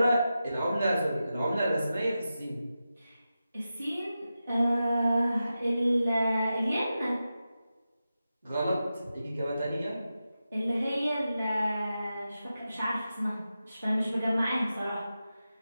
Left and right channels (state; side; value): inverted; both; correlation -0.91